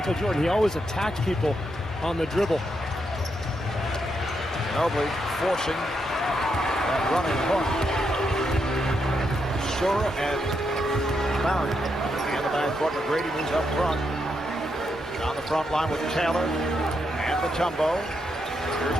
Jordan, he always attacked people on the dribble. Ginobili forcing that running hook. Sura and Barrett in the backcourt. McGrady moves up front. On the front line with Taylor and Mutombo. Here's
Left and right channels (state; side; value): normal; both; correlation 0.81